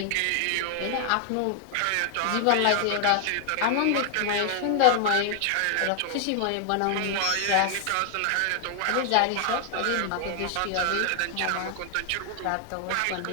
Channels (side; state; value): both; different; correlation 0.00